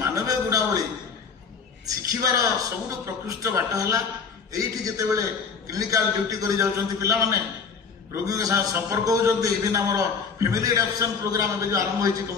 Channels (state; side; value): quieter; right; 5.6 dB